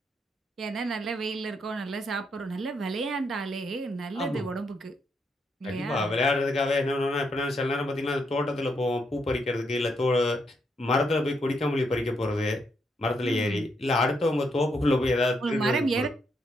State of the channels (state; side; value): normal; both; correlation 0.78